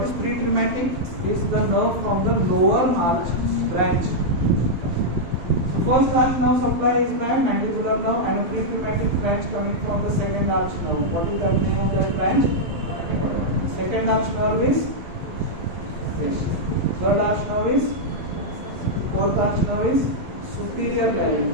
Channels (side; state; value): left; late; 12 ms